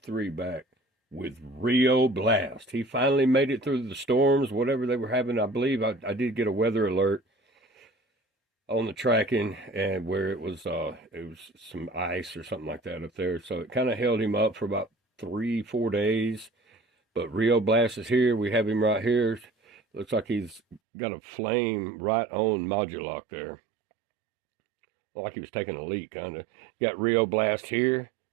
back with Rio Blast. He finally made it through the storms, whatever they were having. I believe I did get a weather alert on the tracking, and where it was some ice or something like that up there. So it kind of held him up for about 3-4 days. But Rio Blast is here. We have him right here. Looks like he's got a flame right on Modulock there. Like he was taking a leak, kind of. Got Rio Blast here,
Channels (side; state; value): left; drops out; at 20.8 s